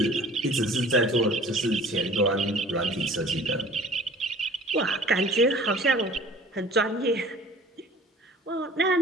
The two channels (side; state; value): both; normal; correlation 0.47